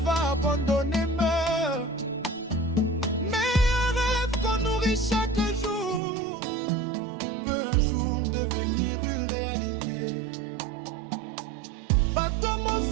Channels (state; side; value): drops out; left; at 6.0 s